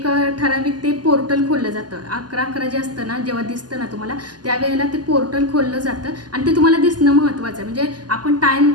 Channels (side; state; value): left; late; 0.70 ms